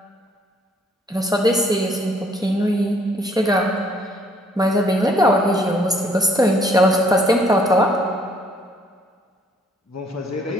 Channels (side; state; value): both; normal; correlation 0.64